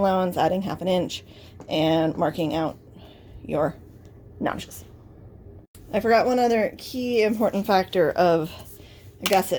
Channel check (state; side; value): identical; both; correlation 1.00